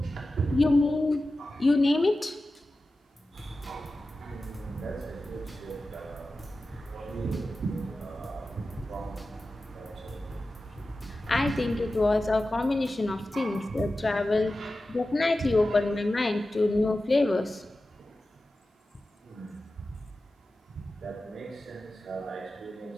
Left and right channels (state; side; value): normal; both; correlation 0.94